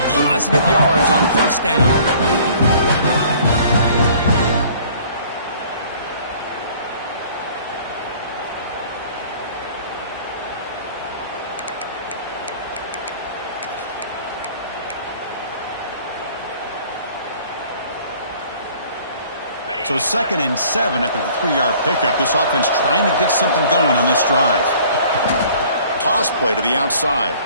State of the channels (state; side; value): inverted; both; correlation -0.53